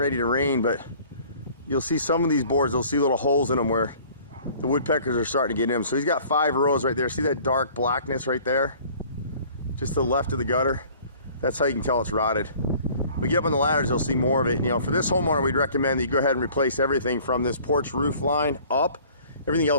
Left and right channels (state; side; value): inverted; both; correlation -0.51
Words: to rain, but you'll see some of these boards, they'll see little holes in them where the woodpeckers are starting to get in them. So he's got 5 rows right there. See that dark blackness right there? Just to the left of the gutter. That's how you can tell it's rotted. When we get up on the ladders, you'll see more of it. You know, for this homeowner, we'd recommend that you go ahead and replace everything from this porch roof line up. Everything